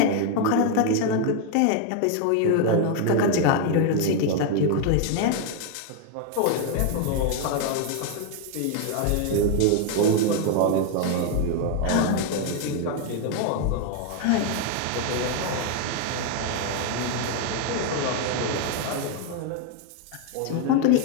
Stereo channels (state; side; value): different; both; correlation 0.01